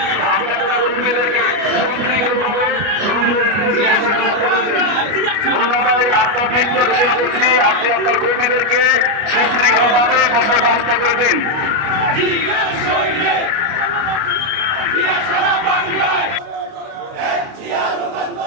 আপনি আপনার কর্মীদেরকে সুশৃঙ্খলভাবে আপনার বৃত্ত ঘোষণা করছি, আপনি আপনার কর্মীদেরকে সুশৃঙ্খলভাবে বসার ব্যবস্থা করে দিন।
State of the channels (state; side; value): late; left; 29 ms